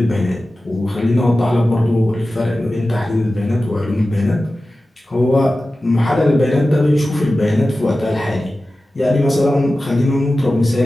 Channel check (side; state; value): both; normal; correlation 0.95